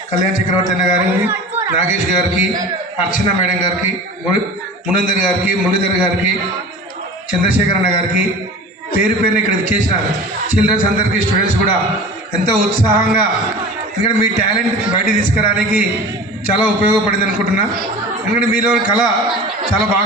కళ్యాణ్ చక్రవర్తి అన్న గారిని, నాగేష్ గారికి, అర్చన మేడం గారికి, మునందర్ గారికి, మురళీధర్ గారికి, చంద్రశేఖర్ అన్న గారికి, పేరు పేరుని ఇక్కడ విచ్చేసిన చిల్డ్రన్స్ అందరికీ, స్టూడెంట్స్ కూడా ఎంతో ఉత్సాహంగా, ఎందుకంటే మీ టాలెంట్ బయట తీసుకురావడానికి చాలా ఉపయోగపడింది అనుకుంటున్నా. ఎందుకంటే మీలో కళ చాలా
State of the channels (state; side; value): normal; both; correlation 0.37